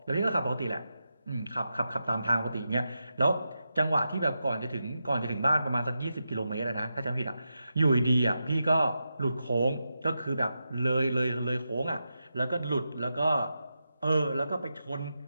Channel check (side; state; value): both; inverted; correlation -0.89